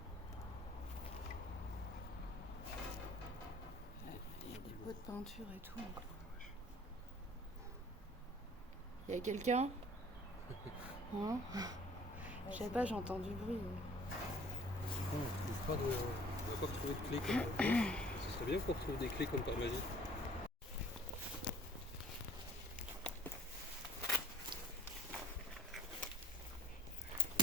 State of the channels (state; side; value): normal; both; correlation 0.50